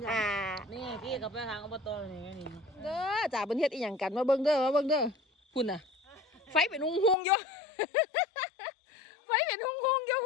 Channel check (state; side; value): drops out; right; at 7.2 s